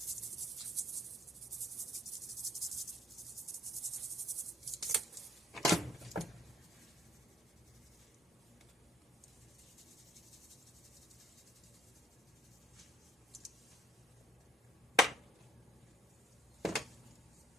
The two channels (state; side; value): normal; both; correlation 0.64